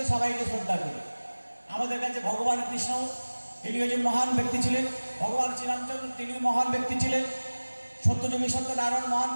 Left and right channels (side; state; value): both; inverted; correlation -1.00